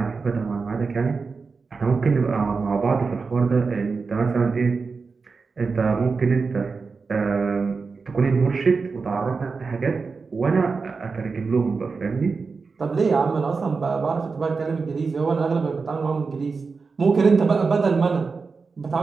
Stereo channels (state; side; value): quieter; left; 4.7 dB